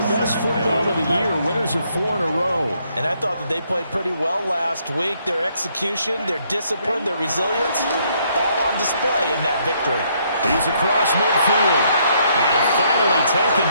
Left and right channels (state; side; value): inverted; both; correlation -0.70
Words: best football of the year. Winners of 4 in a row. And I thought that they played pretty well last week. Their execution, their discipline, their resilience, all on display in that victory. He's across midfield. And finally taken